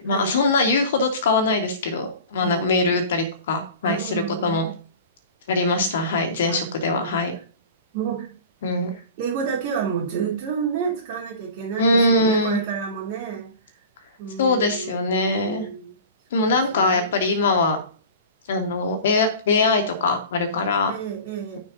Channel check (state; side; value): inverted; both; correlation -0.37